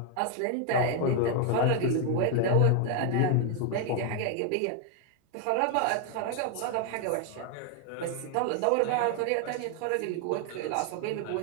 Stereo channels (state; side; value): different; both; correlation 0.00